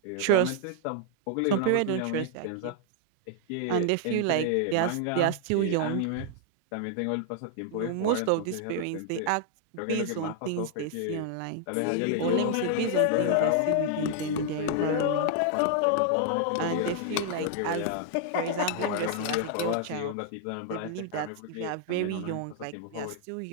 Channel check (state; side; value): different; both; correlation 0.00